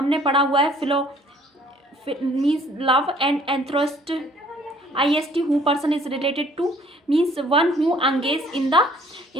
पढ़ा हुआ है means love, and anthropist IST who person is related to means one who engage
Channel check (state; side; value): normal; both; correlation 0.58